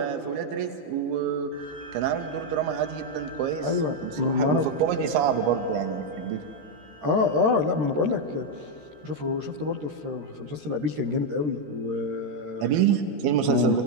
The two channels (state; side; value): late; left; 14 ms